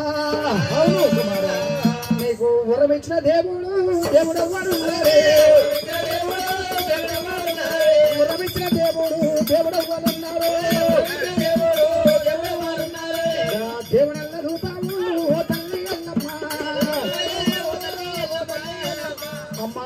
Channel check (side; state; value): both; identical; correlation 1.00